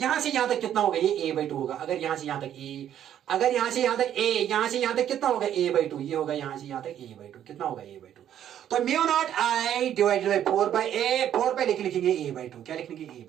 से यहां तक कितना होगा, ये ए बाई 2 होगा, अगर यहां से यहां तक ए, अगर यहां से यहां तक ए, यहां से यहां तक कितना होगा ए बाई 2, ये होगा यहां से यहां तक ए बाई 2, कितना होगा ए बाई 2। तो mu naught I divided by 4 by A, 4 by लिखेंगे ए बाई 2, क्या लिखेंगे ए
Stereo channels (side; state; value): left; quieter; 10.5 dB